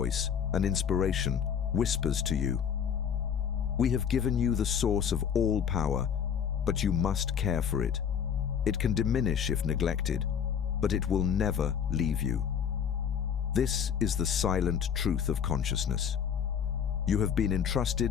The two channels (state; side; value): quieter; right; 7.8 dB